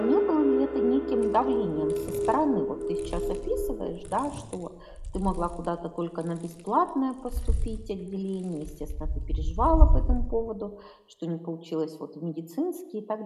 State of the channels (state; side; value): identical; both; correlation 1.00